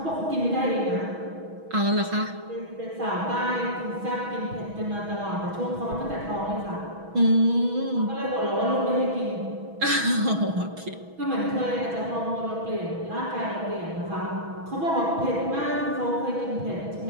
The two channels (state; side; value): late; left; 6.2 ms